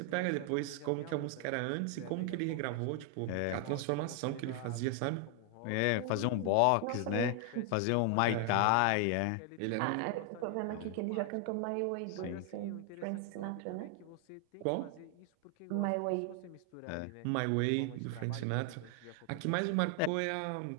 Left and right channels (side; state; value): both; different; correlation 0.00